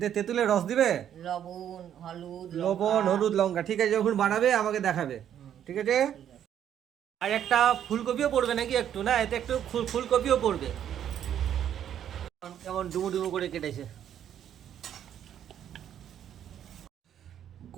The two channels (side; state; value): left; quieter; 9.9 dB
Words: তেঁতুলের রস দিবে? লবণ হলুদ লবণ, লঙ্কা। হলুদ, লঙ্কা। ঠিক আছে, যখন বানাবে আমাকে দেখাবে। ঠিক আছে। ঠিক আছে। আর একটা ফুলকপিও পড়বে নাকি একটু? না, এতে একটু ফুলকপিও পড়বে। কেমন ডুমু ডুমু করে কেটেছে।